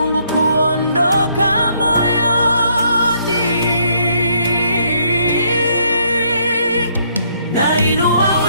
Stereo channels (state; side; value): inverted; both; correlation -0.69